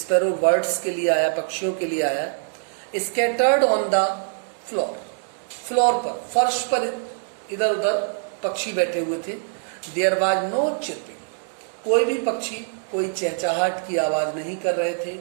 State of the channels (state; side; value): silent; left; digital silence